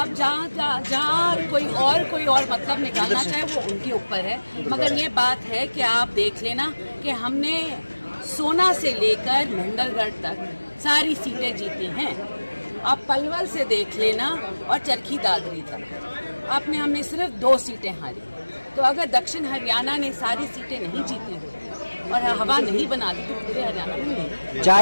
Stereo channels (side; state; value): both; inverted; correlation -1.00